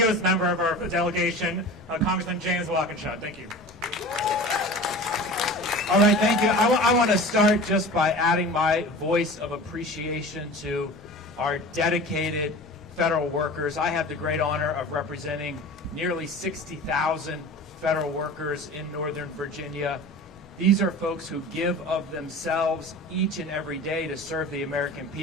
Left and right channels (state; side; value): normal; both; correlation 0.37